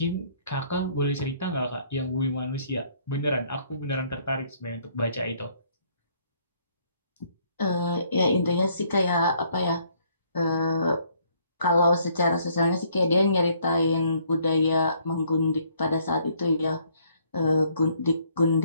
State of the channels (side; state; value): both; inverted; correlation -0.65